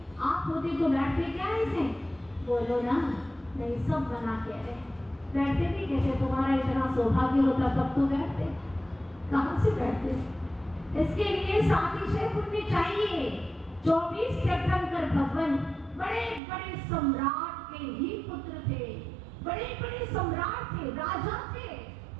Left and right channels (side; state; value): left; drops out; at 16.4 s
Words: आप होते तो बैठते क्या ऐसे? बोलो ना, नहीं सब बना के रहे, बैठते भी कैसे? तुम्हारा इतना सौभाग्य होता तब तो बैठते, कहाँ से बैठते? इसके लिए सातिशय पुण्य चाहिए। 24 तीर्थंकर भगवान बड़े बड़े सम्राट के ही पुत्र थे, बड़े बड़े सम्राट थे, राजा थे।